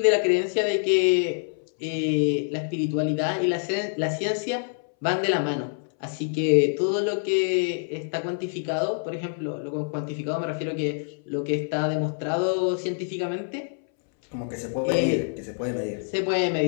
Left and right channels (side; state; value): right; silent; 61 dB below the other